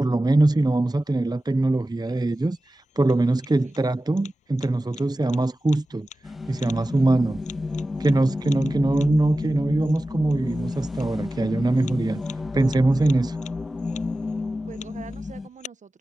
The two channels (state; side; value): normal; both; correlation 0.95